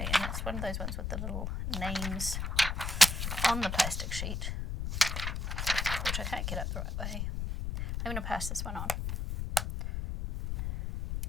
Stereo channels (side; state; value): left; noise; rumble, 3 dB below the sound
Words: it's one of those ones with the little names on the plastic sheet, which I can't get up the right way. I'm going to pass this one on.